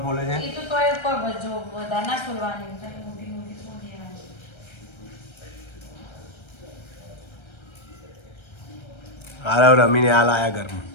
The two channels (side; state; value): right; late; 1.3 ms